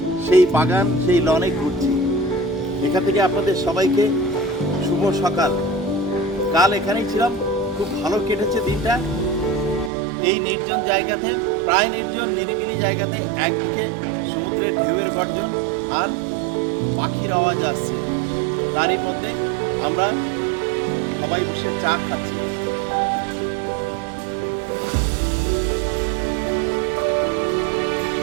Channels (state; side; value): drops out; left; at 9.9 s